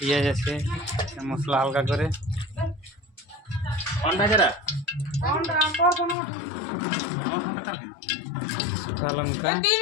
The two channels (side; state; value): right; drops out; at 6.2 s